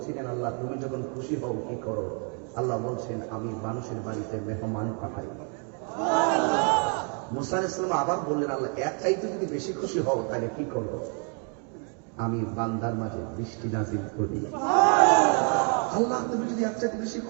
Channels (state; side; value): quieter; left; 39.8 dB